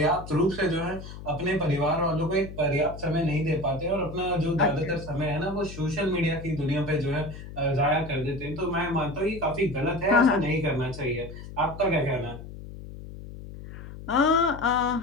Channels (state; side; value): noise; left; hum, 12 dB below the sound